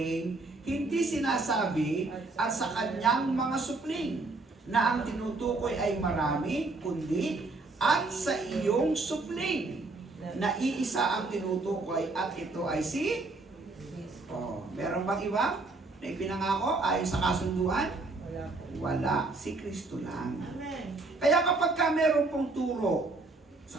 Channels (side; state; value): left; quieter; 3.4 dB